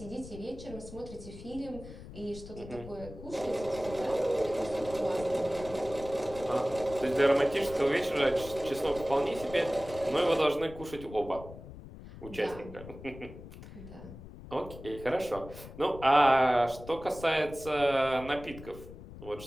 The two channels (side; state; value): left; noise; rumble, 15 dB below the sound